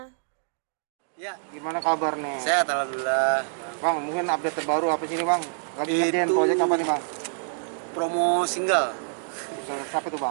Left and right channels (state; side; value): silent; left; digital silence